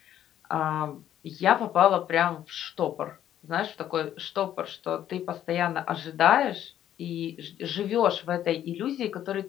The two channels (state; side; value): quieter; right; 11.2 dB